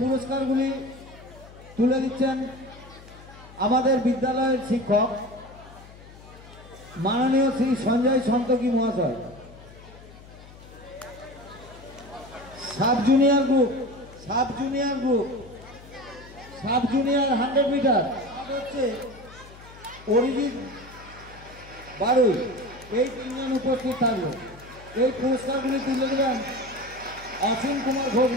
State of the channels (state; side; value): noise; left; hum, 20 dB below the sound